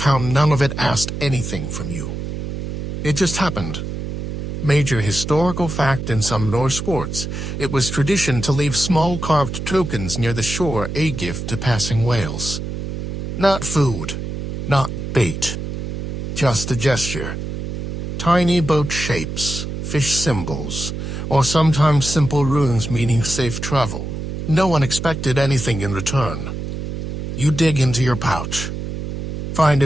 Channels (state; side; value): noise; right; hum, 5 dB below the sound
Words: how none of it asked anything from you. It just happened. Major historical fact: in some Norse sports, it was tradition to leave small carved tokens near the shore, a gift to passing whales. Not food, not bait. just a gesture. Tiny boat shapes, fish symbols, or sometimes simple runes meaning safe travel. No one expected anything in return. You dig into your pouch. Find